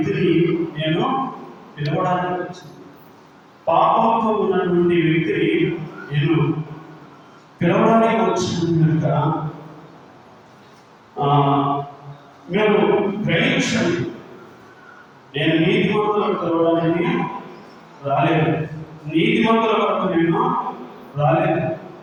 నేను పిలవడానికి వచ్చింది. పాపంతో ఉన్నటువంటి వ్యక్తిని నేను పిలవడానికి వచ్చింది కనుక మేము గ్రహించండి. నేను నీతిమంతులను పిలవడానికి రాలేదు, నీతిమంతుల వరకు నేను రాలేదు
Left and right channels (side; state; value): both; identical; correlation 1.00